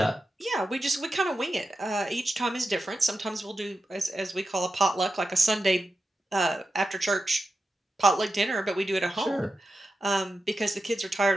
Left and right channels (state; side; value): normal; both; correlation 0.91